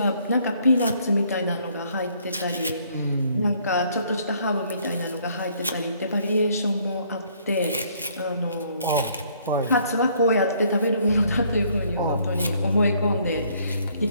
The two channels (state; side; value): inverted; both; correlation -0.64